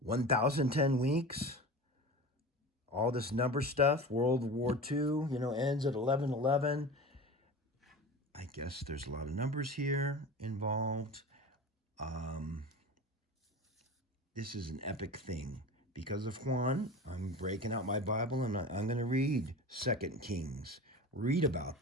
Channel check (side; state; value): both; normal; correlation 0.32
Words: weeks. All this number stuff. World War II, ends at 11/11. I guess there's a lot of numbers here involved. This is an epic thing. Because of Juan, I'm breaking out my Bible and I'm going to read 2 Kings. Read